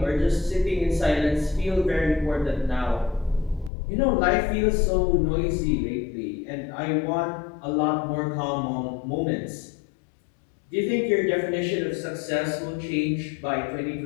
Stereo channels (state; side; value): drops out; right; at 3.7 s